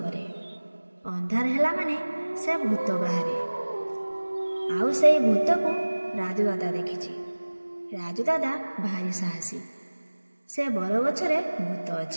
अंधार हेला माने से भूत बाहरे। आउ से भूत को राजू दादा देखिछि। राजू दादा भारी साहसी। से बर गछरे भूत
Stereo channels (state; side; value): inverted; both; correlation -1.00